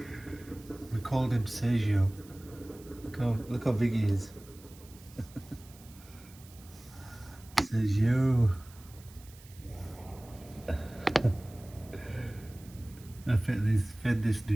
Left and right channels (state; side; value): noise; right; hiss, 22 dB below the sound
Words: We called him Sergio. Look how big he is. Sergio. I fed this